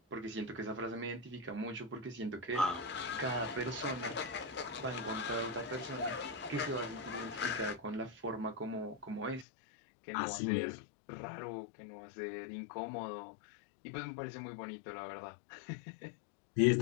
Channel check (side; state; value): right; drops out; at 9.5 s